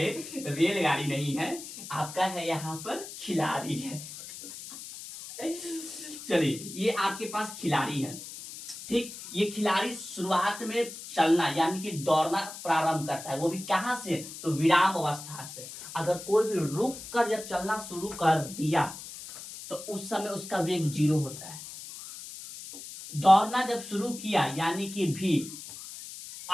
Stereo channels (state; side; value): noise; left; hiss, 12 dB below the sound